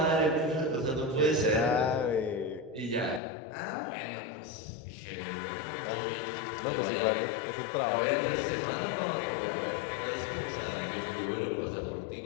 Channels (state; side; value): drops out; right; at 3.2 s